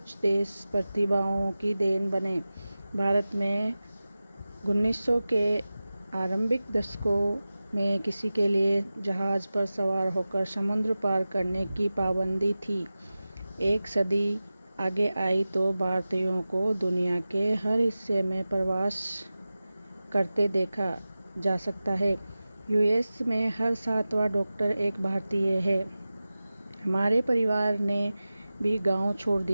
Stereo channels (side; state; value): both; inverted; correlation -0.96